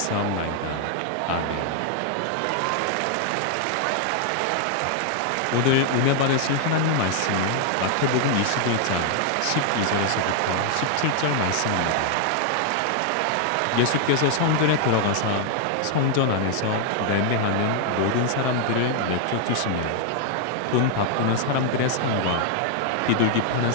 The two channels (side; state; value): both; different; correlation 0.00